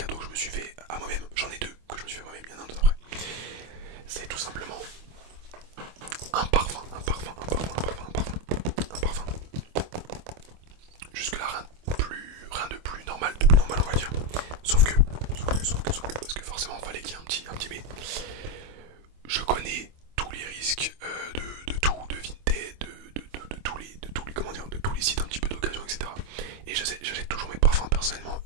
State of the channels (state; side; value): late; left; 25 ms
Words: que je me suis fait à moi-même. J'en ai deux que je me suis fait à moi-même, il y en a un autre après. C'est tout simplement un parfum. Jusque là rien de plus normal, on va dire. Sauf que, parce que forcément il fallait qu'il y ait un petit mais. Je connais tous les risques de tout, de Vinted, de tous les sites un petit peu d'occasion, etc. Et j'achète toujours mes parfums personnellement